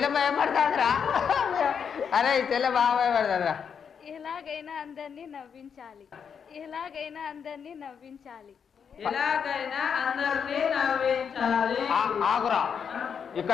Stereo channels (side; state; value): right; quieter; 7.0 dB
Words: భయపడతాదిరా. అరే చెల్లె బాగా భయపడతాదిరా. ఎలాగైనా అందరినీ నవ్వించాలి, ఎలాగైనా అందరినీ నవ్వించాలి, ఎలాగైనా అందరినీ నవ్వించాలి. ఆగురా,